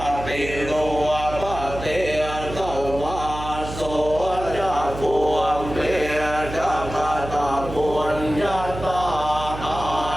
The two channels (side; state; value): right; noise; hum, 9 dB below the sound